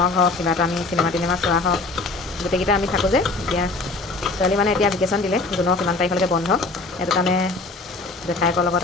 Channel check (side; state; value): right; quieter; 3.5 dB